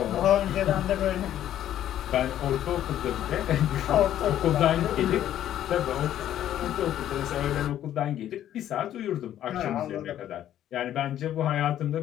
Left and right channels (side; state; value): right; quieter; 11.6 dB